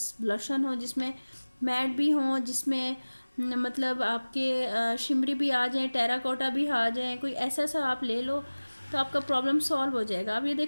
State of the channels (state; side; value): inverted; both; correlation -1.00